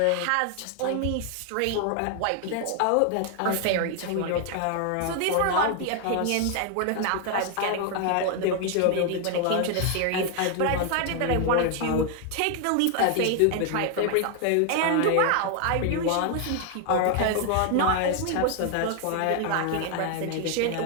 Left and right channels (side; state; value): both; different; correlation 0.00